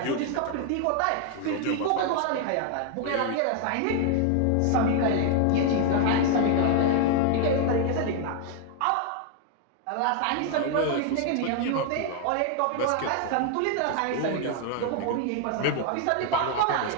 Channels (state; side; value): different; both; correlation 0.00